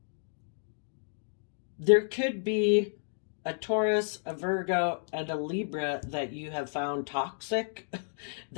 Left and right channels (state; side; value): silent; right; digital silence